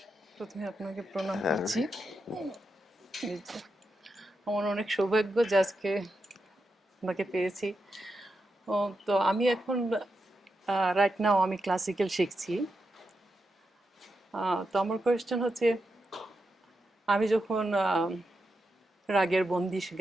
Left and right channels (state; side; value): normal; both; correlation 0.87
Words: প্রথমে আপনাকে প্রণাম করছি আমার অনেক সৌভাগ্য যে আজকে আপনাকে পেয়েছি তো আমি এখন রাইট নাও আমি ক্লাসিক্যাল শিখছি তো আমার কোয়েশ্চেন হচ্ছে আমি যখন রাগের বন্দিশ